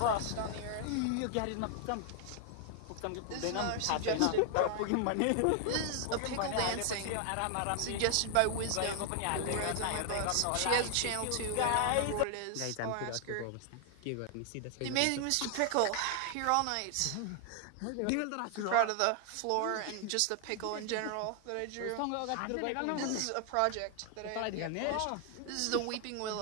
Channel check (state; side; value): different; both; correlation 0.00